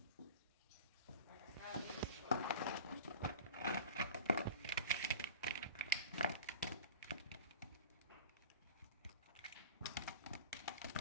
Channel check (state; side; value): inverted; both; correlation -0.36